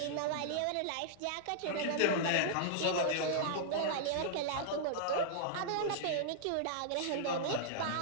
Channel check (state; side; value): different; both; correlation -0.01